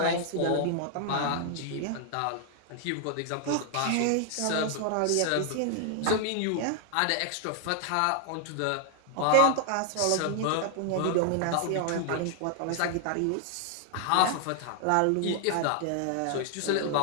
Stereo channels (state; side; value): different; both; correlation 0.00